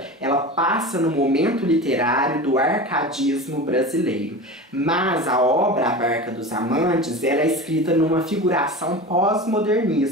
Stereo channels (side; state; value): both; normal; correlation 0.30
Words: ela passa no momento literário do arcadismo brasileiro. Mas a obra A Barca dos Amantes, ela é escrita numa figuração